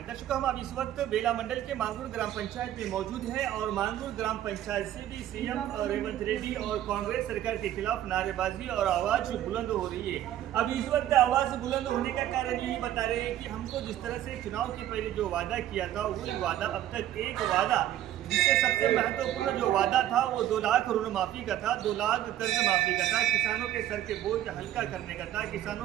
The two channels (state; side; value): quieter; left; 12.4 dB